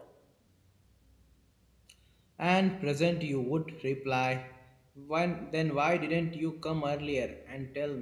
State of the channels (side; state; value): both; identical; correlation 1.00